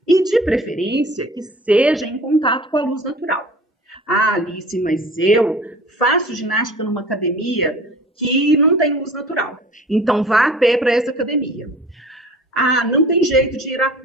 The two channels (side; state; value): both; normal; correlation 0.44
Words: e, de preferência, que seja em contato com a luz natural. Alice, mas eu faço ginástica numa academia que não tem luz natural, então vá a pé para essa academia. Não tem jeito de ir a